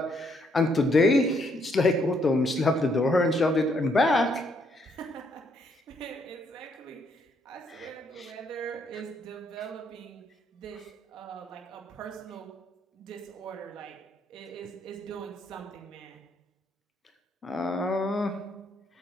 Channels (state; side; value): normal; both; correlation 0.72